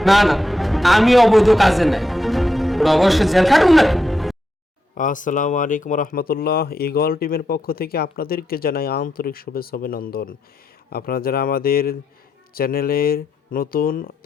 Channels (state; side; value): normal; both; correlation 0.83